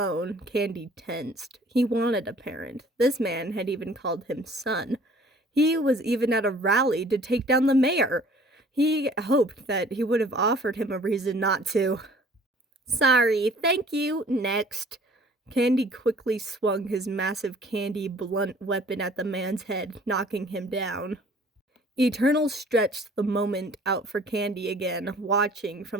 Candy tensed. He wanted a parent. This man had even called him son. He was even at a rally to take down the mayor. He hoped that he would have offered him a reason not to. "Sorry, thank you, next." Candy quickly swung his massive candy blunt weapon at the man's head, knocking him down. Eternal stretched the moment out for Candy again, watching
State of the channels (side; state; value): both; normal; correlation 0.53